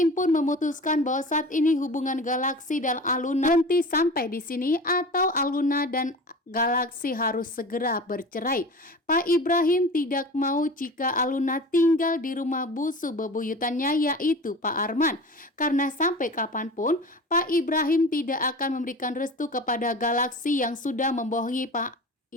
pun memutuskan bahwa saat ini hubungan Galaksi dan Aluna berhenti sampai di sini atau Aluna dan Galaksi harus segera bercerai. Pak Ibrahim tidak mau jika Aluna tinggal di rumah busu bebuyutannya yaitu Pak Arman. Karena sampai kapanpun Pak Ibrahim tidak akan memberikan restu kepada Galaksi yang sudah membohongi Pak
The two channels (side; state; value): both; normal; correlation 0.36